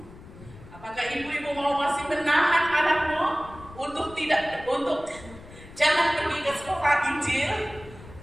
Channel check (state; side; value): noise; left; rumble, 18 dB below the sound